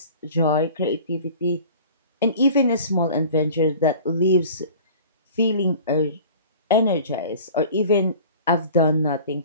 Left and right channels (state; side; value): inverted; both; correlation -0.43